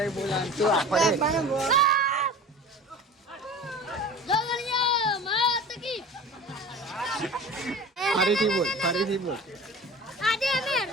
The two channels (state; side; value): normal; both; correlation 0.38